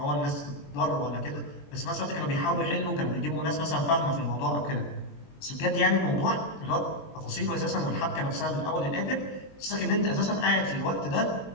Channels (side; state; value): right; late; 21 ms